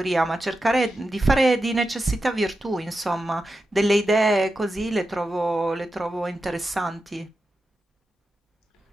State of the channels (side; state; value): both; normal; correlation 0.90